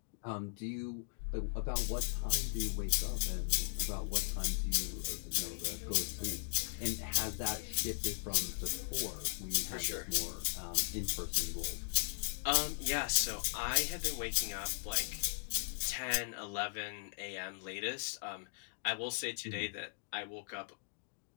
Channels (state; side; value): silent; right; digital silence